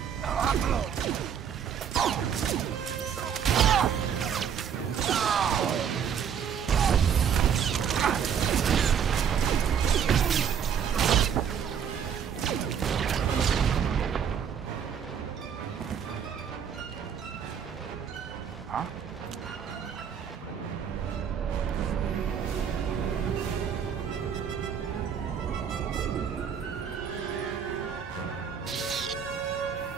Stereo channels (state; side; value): quieter; left; 7.9 dB